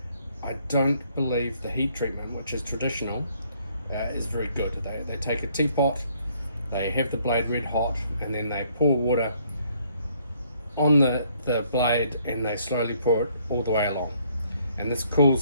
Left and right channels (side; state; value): both; inverted; correlation -0.66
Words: I don't believe the heat treatment, which is traditional, is very good. They take a teapot, they have the blade red hot, and then they pour water on the blade and they slowly pour it all the way along. And this cools